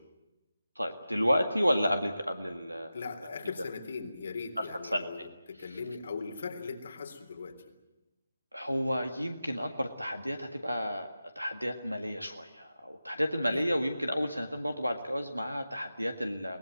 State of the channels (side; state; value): both; inverted; correlation -0.92